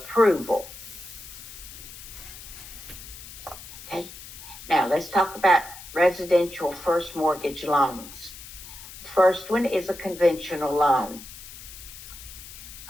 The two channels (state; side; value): noise; left; hiss, 15 dB below the sound